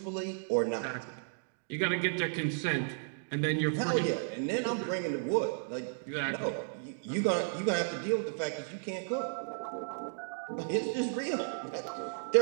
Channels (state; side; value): silent; left; digital silence